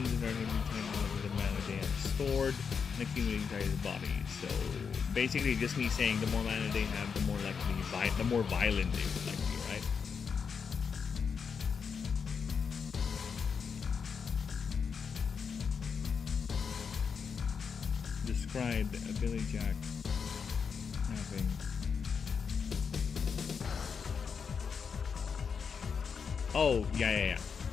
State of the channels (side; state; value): right; quieter; 6.1 dB